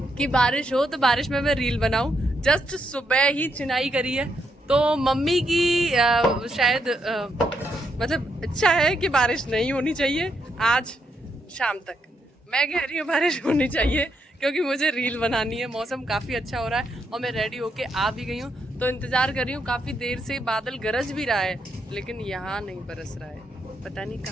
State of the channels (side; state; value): both; normal; correlation 0.79